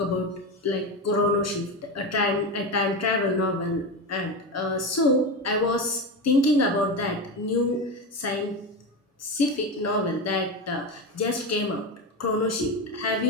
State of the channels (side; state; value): both; normal; correlation 0.18